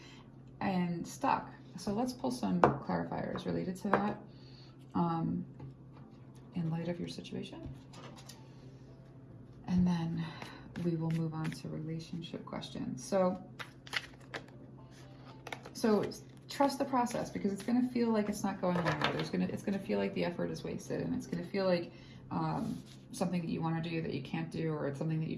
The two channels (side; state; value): both; identical; correlation 1.00